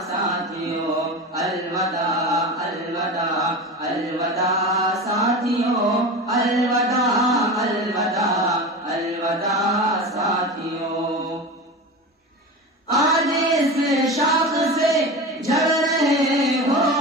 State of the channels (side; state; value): both; normal; correlation 0.28